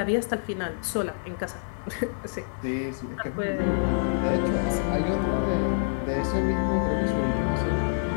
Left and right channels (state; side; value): silent; right; digital silence